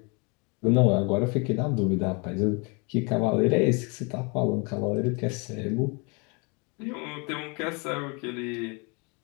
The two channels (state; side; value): quieter; right; 31.6 dB